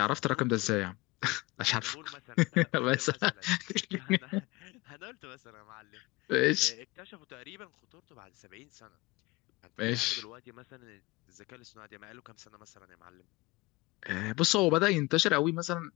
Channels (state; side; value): quieter; right; 22.3 dB